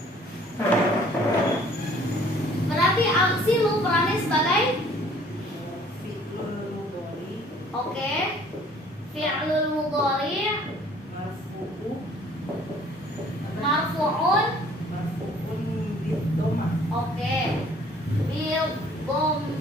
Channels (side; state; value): both; normal; correlation 0.56